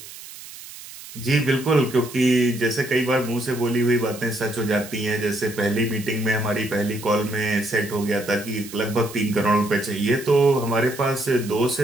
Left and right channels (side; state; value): right; noise; hiss, 15 dB below the sound